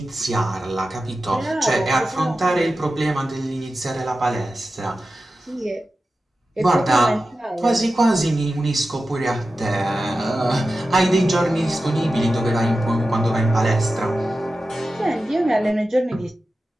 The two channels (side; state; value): both; normal; correlation 0.93